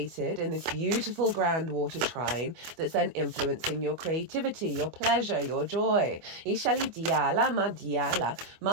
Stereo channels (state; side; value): late; left; 24 ms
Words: in this beautiful grand water trine that's then influencing your creativity, your pleasure, your joy.